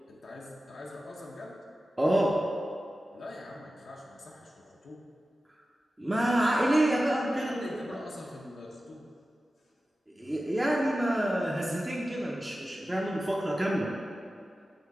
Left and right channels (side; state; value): both; normal; correlation 0.94